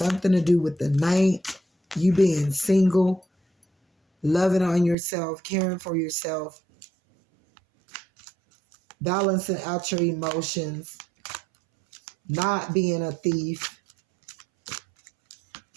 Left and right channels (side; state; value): left; drops out; at 5.0 s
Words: to do with the 9th, you being single, loving on yourself, caring for yourself, balancing out your emotions, not being a thief,